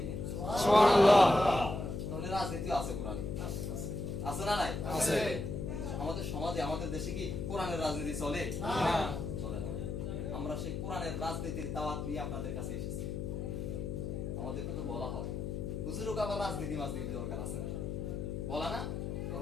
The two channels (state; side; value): noise; left; hum, 3 dB below the sound